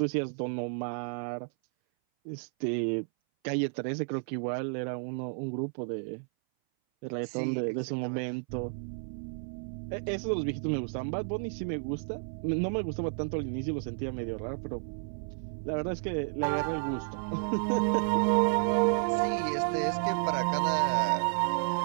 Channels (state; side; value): silent; left; 57 dB below the other